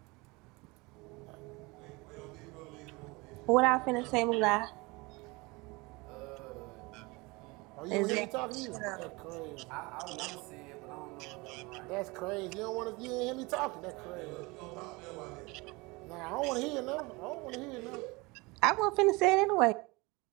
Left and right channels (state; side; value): quieter; left; 24.9 dB